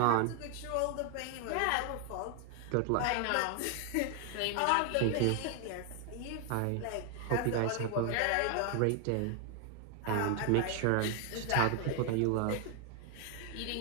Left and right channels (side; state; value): both; different; correlation 0.00